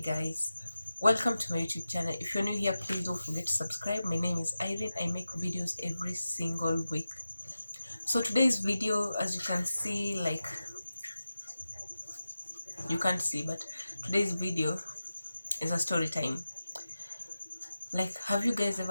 welcome to my YouTube channel. If you're new here, please don't forget to subscribe. My name is Irene. I make videos every single week. So today's video, as you can see, like you can't see, but today's video is a story time. Like, have you guys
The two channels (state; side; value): inverted; both; correlation -0.93